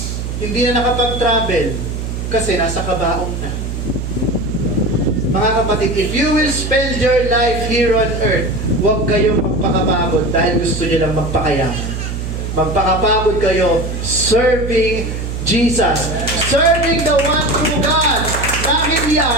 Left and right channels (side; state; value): right; noise; hum, 5 dB below the sound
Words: Hindi na nakapag-travel kasi nasa kabaong na. Mga kapatid, if you will spend your life here on earth, huwag kayong magpakapagod dahil gusto nyo lang magpakayaman. Magpakapagod kayo serving Jesus. Serving the one true God. Dahil